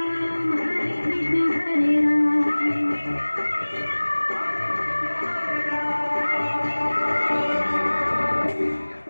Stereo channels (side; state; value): both; inverted; correlation -1.00